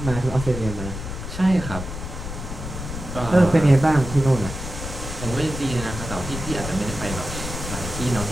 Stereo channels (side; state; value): left; noise; rumble, 7 dB below the sound